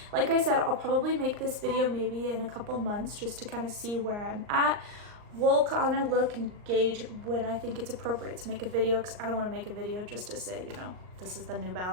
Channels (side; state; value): left; late; 39 ms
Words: like I said, I'll probably make this video maybe in a couple months just to kind of see where I'm at. We'll kind of look and gauge when I think it's appropriate to make a video, because I don't want to make a video just to say, you know, this is the new